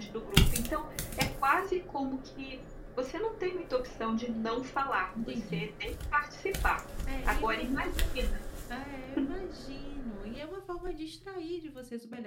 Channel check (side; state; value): both; identical; correlation 1.00